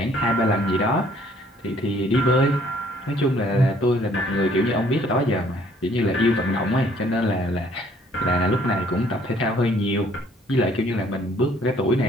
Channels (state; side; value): normal; both; correlation 0.61